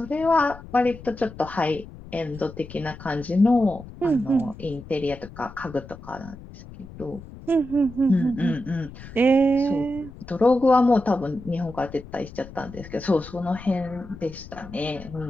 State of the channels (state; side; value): noise; left; rumble, 16 dB below the sound